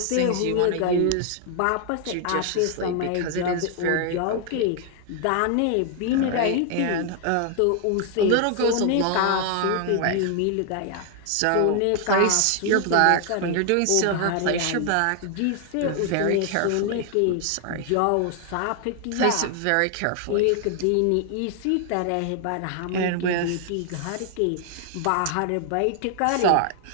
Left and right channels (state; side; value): different; both; correlation 0.00